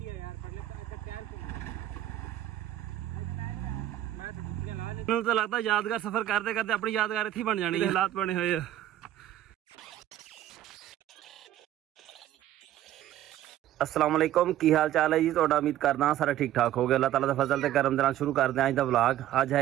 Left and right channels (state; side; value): quieter; left; 12.7 dB